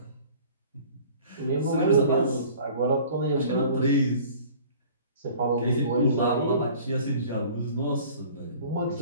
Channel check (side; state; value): both; inverted; correlation -0.48